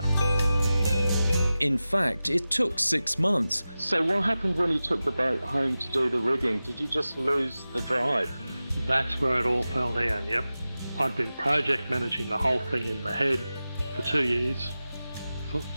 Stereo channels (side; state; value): both; inverted; correlation -0.95